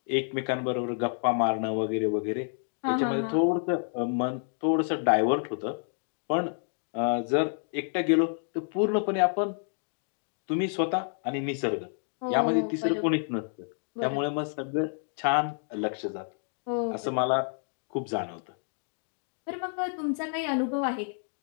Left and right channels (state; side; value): silent; right; 58 dB below the other